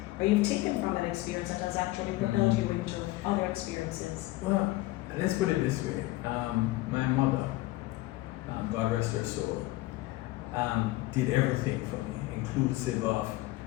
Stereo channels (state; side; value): quieter; right; 18.8 dB